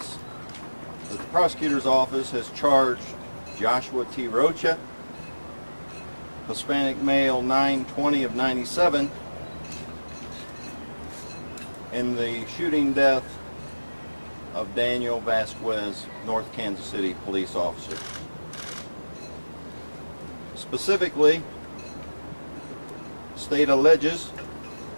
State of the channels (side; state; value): both; inverted; correlation -1.00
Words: that the Prosecutor's Office has charged Joshua T. Rocha, Hispanic male, 9/20 of 97, in the shooting death of Daniel Vasquez, North Kansas City police officer. Specifically, the state alleges